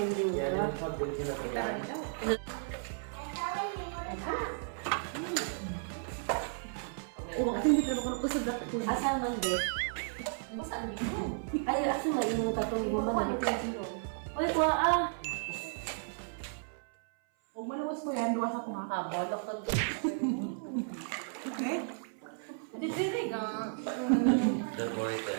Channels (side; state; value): left; silent; 55 dB below the other